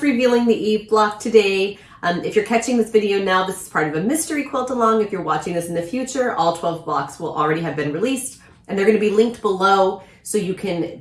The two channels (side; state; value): both; identical; correlation 1.00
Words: revealing the Eve block today. If you're catching this video now, this is part of a mystery quilt along. If you're watching this in the future, all 12 blocks will already have been released, and they're going to be linked below so you can